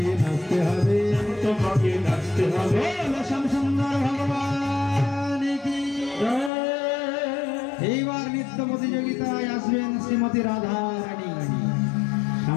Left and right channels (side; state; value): right; drops out; at 6.5 s